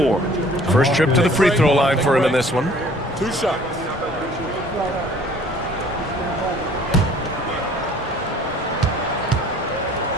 First trip to the free throw line for him in this one. 2 shots.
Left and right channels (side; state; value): both; normal; correlation 0.53